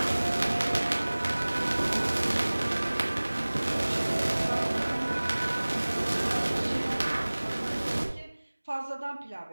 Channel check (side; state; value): both; inverted; correlation -1.00